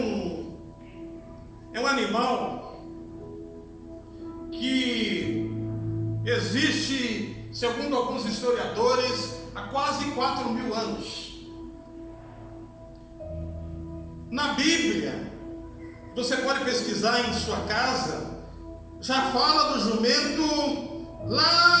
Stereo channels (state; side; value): identical; both; correlation 1.00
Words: um animal que existe, segundo alguns historiadores, há quase 4.000 anos. Na Bíblia, você pode pesquisar em sua casa, já fala do jumento